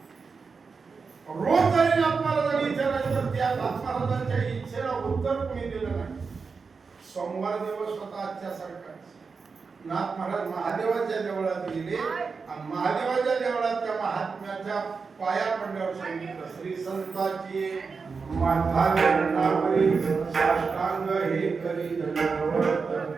रोज जरी आपल्याला जरी विचारायचं तर त्या महाराजांच्या इच्छेला उत्तर कोणी दिलं नाही. सोमवार दिवस होता आजच्या सारखा. नाथ महाराज महादेवाच्या देवळात गेले आणि महादेवाच्या देवळात त्या महात्म्याच्या पाया पडल्यावर सांगितलं, श्री संताची माथा चरणावरी साष्टांग हे करी दंडवत.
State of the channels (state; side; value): quieter; left; 5.0 dB